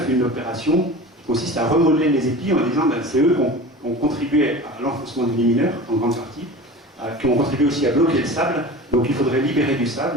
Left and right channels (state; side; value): normal; both; correlation 0.35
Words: une opération qui consiste à remodeler les épis en disant c'est eux qui ont contribué à l'enfoncement du lit mineur, en grande partie, qui ont contribué aussi à bloquer le sable, donc il faudrait libérer du